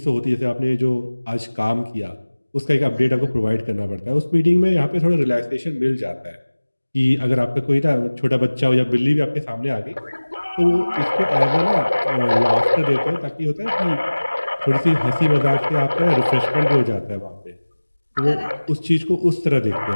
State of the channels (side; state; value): both; inverted; correlation -1.00